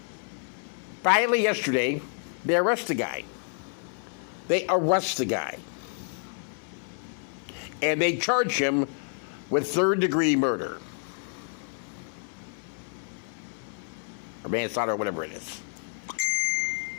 Finally, yesterday, they arrest the guy. And they charge him with third-degree murder. Or manslaughter, or whatever it is.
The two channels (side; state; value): right; silent; 59 dB below the other